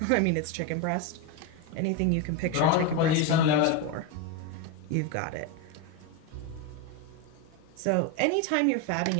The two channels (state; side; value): different; both; correlation 0.03